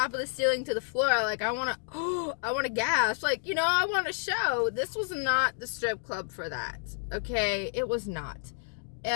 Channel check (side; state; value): right; silent; digital silence